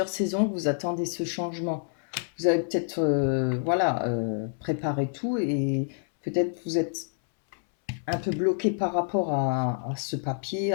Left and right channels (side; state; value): right; silent; 60 dB below the other